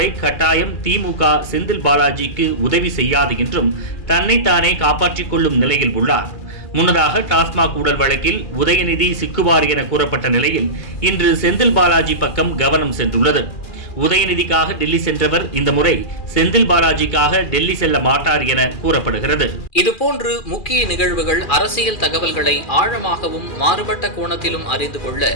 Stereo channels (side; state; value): right; late; 2.4 ms